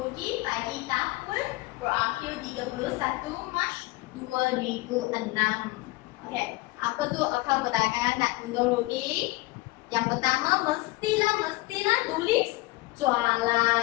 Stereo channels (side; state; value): right; quieter; 21.6 dB